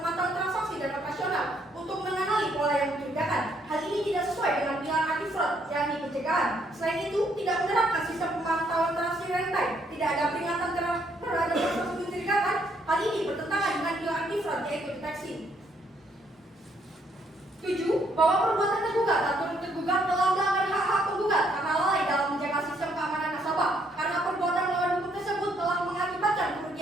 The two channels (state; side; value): normal; both; correlation 0.70